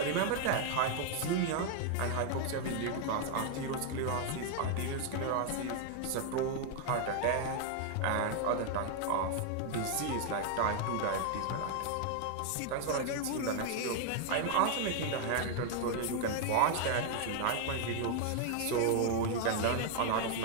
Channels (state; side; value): different; both; correlation 0.00